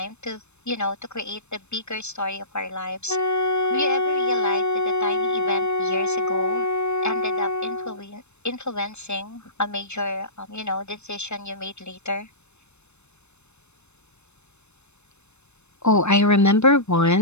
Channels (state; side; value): late; right; 0.81 ms